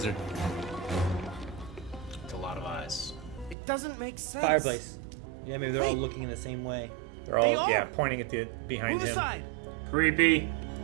It's a lot of eyes. It doesn't make sense. Fireplace. Yeah, maybe they're all looking in the same way. They're They all, are. pointing at the behind Move him. aside. Creepy.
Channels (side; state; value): left; drops out; at 3.6 s